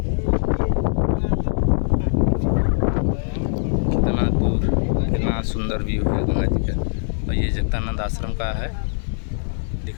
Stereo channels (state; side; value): silent; right; digital silence